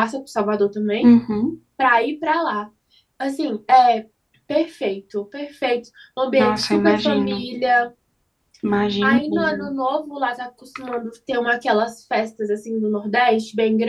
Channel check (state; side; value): identical; both; correlation 1.00